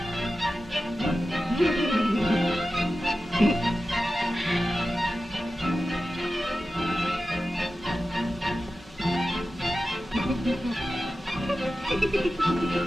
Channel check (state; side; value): normal; both; correlation 0.93